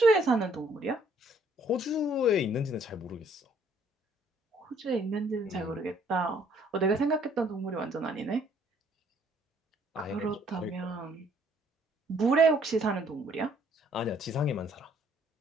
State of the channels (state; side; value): normal; both; correlation 0.63